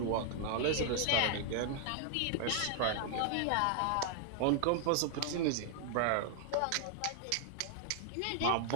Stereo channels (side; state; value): both; different; correlation 0.00